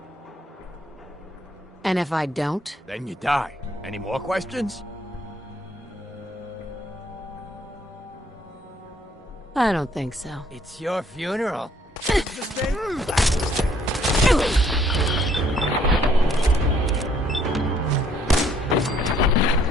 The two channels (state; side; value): normal; both; correlation 0.65